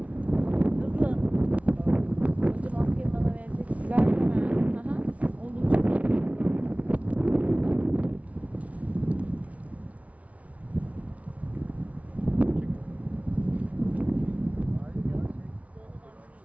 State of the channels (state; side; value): late; left; 0.066 ms